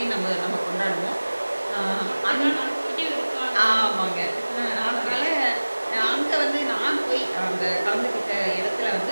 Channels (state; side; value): inverted; both; correlation -1.00